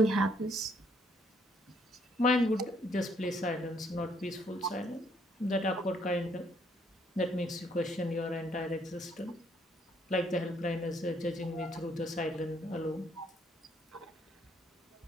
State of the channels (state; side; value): normal; both; correlation 0.68